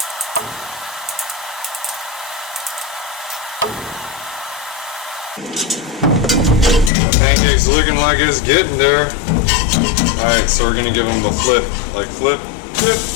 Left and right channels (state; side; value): drops out; right; at 6.9 s